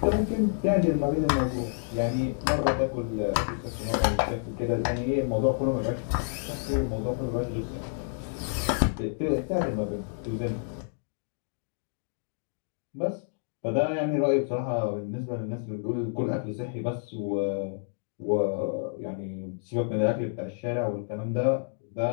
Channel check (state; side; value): silent; right; digital silence